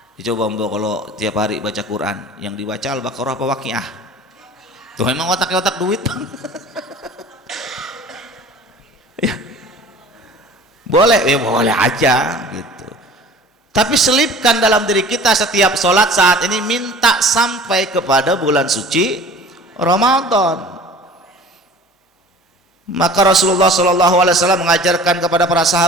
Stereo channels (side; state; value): both; normal; correlation 0.44